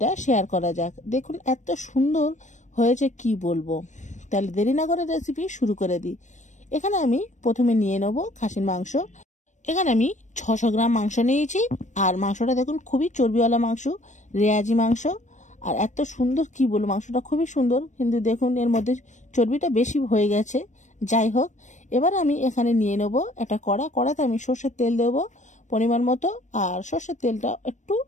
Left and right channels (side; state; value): right; late; 0.35 ms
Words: শেয়ার করা যাক। দেখুন এত সুন্দর হয়েছে কি বলবো। তাহলে দেরি না করে রেসিপি শুরু করে দিই। এখানে আমি প্রথমে নিয়ে নেব খাসির মাংস। এখানে আমি 600 গ্রাম মাংস নিয়েছি। আর মাংসটা দেখুন খুবই চর্বিওয়ালা মাংস, রেয়াজি মাংস। আর এত সুন্দর কি বলবো, মাংসটা খুবই সুন্দর, কিন্তু দেখুন এর মধ্যে চর্বিটা বেশি হয়ে গেছে। যাই হোক, এবার আমি এখানে নিয়ে নেব একটা কড়াতে আমি সর্ষের তেল দেবো পরিমাণ মতো। আর সর্ষের তেলটা একটু